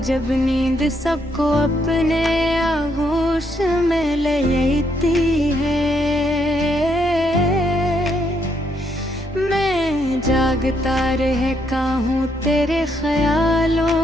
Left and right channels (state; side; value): normal; both; correlation 0.74